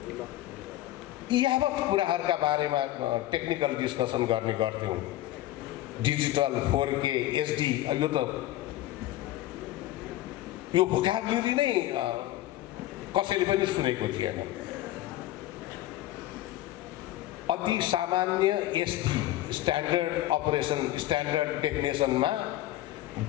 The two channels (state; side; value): quieter; right; 15.2 dB